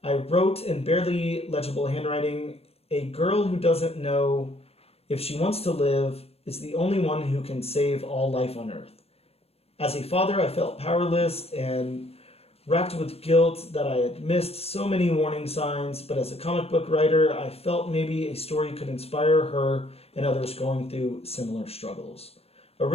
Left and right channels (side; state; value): right; late; 0.29 ms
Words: I wrote in barely legible handwriting, a girl who doesn't know if she wants to live is the only one who can save all life on earth. As a father, I felt powerless and racked with guilt that I had missed so many warning signs, but as a comic book writer, I felt maybe a story could inspire her and others going through similar struggles.